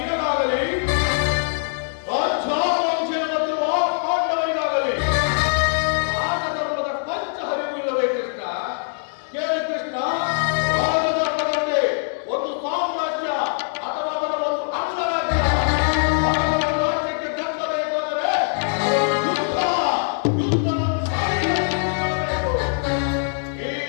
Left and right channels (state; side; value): silent; right; 64 dB below the other